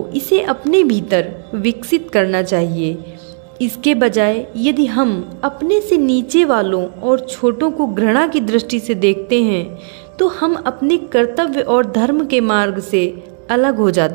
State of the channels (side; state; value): left; silent; digital silence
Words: इसे अपने भीतर विकसित करना चाहिए। इसके बजाय यदि हम अपने से नीचे वालों और छोटों को घृणा की दृष्टि से देखते हैं, तो हम अपने कर्तव्य और धर्म के मार्ग से अलग हो